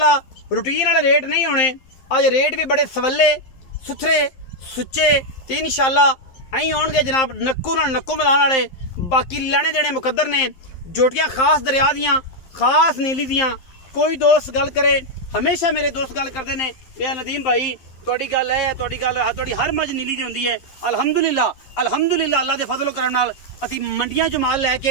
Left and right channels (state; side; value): late; right; 11 ms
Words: रूटीन वाले रेट नहीं होने, अज रेट भी बड़े सवले सुथरे सुच्चे ते इंशाअल्लाह अं आउणगे जनाब नक्कू नाल नक्कू मिलाने वाले। बाकी लैने देने मुकद्दर ने, जोटियां खास दरिया दियां खास नीली दियां। कोई दोस्त गल करे, हमेशा मेरे दोस्त गल करते हैं कि नदीम भाई तुहाडी गल है, तुहाडी हर मज नीली दी हुंदी है। अल्हम्दुलिल्लाह अल्हम्दुलिल्लाह अल्लाह दे फजलो करम नाल असीं मंडियां चों माल